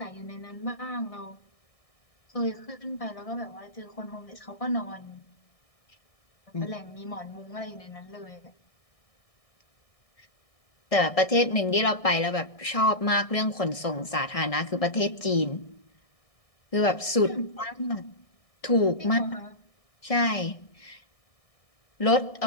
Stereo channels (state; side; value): late; right; 1.6 ms